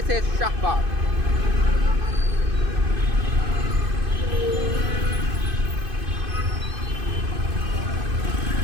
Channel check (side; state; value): left; late; 2.5 ms